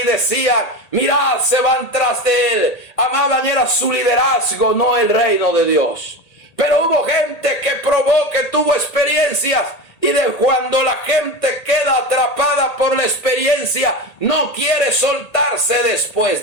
decían: mirad, se van tras de él. Amaban era su liderazgo, no el reino de Dios. Pero hubo gente que probó, que tuvo experiencias, y de cuando la gente queda atrapada por la experiencia, no quiere soltarse después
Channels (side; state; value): right; late; 1.8 ms